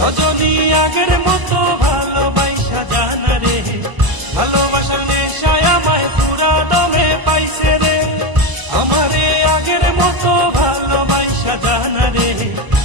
আগের মতো ভালোবাসা জানা রে, ভালোবাসার নেশায় আমায় পুরা দমে পাইছে রে। আমারে আগের মতো ভালোবাসা জানা রে,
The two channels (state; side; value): late; left; 1.0 ms